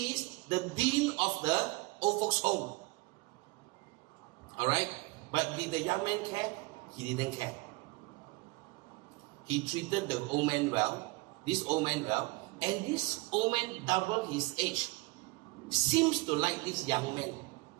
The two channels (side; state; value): left; quieter; 24.4 dB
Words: is the dean of the old folks home. Alright? But did the young man care? He didn't care. He treated the old man well. This old man well. And this old man, double his age, seems to like this young man.